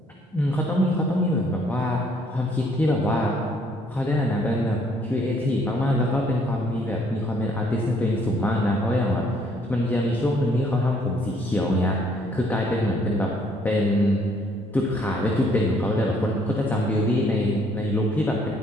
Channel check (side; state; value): both; normal; correlation 0.65